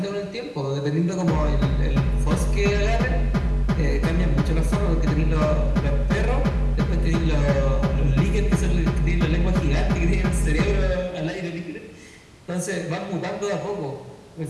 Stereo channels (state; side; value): identical; both; correlation 1.00